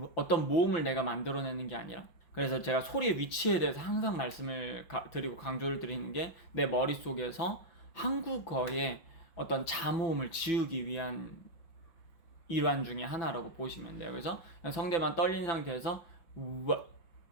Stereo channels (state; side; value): late; right; 6.0 ms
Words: 어떤 모음을 내가 만들어내는 게 아니라. 그래서 제가 소리의 위치에 대해서 항상 말씀을 드리고 강조를 드리는 게 내 머릿속에서 한국어의 어떤 자모음을 지우기 위한 일환 중에 하나라고 보시면 돼요. 그래서 성대만 떨린 상태에서 우와